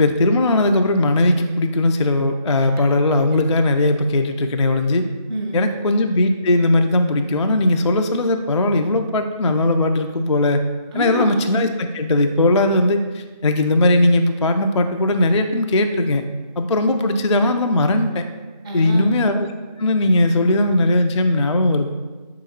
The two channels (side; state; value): both; inverted; correlation -0.70